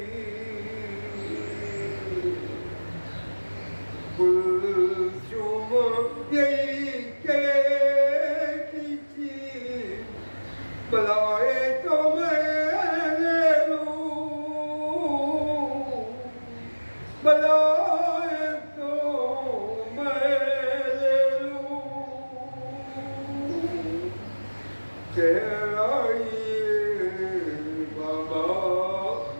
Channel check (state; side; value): inverted; both; correlation -1.00